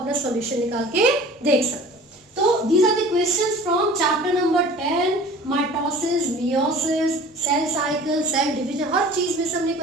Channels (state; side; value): normal; both; correlation 0.44